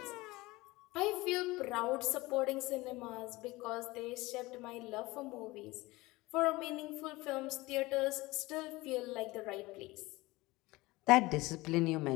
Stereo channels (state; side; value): quieter; right; 20.9 dB